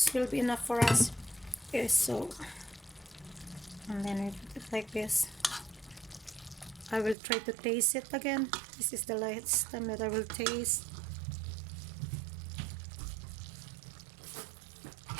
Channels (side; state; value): left; drops out; at 7.2 s